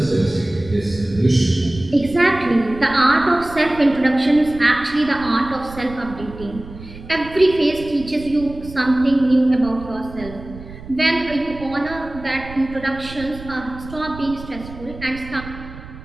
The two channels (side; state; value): right; noise; rumble, 15 dB below the sound